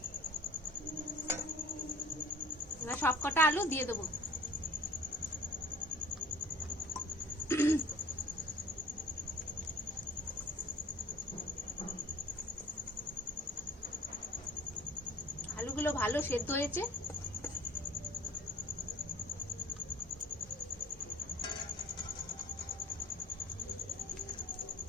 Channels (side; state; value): both; normal; correlation 0.45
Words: এবার সব কটা আলু দিয়ে দেবো। আলুগুলো ভালো সেদ্ধ হয়েছে।